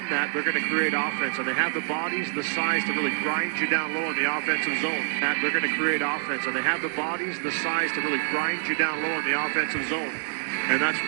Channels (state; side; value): silent; left; 61 dB below the other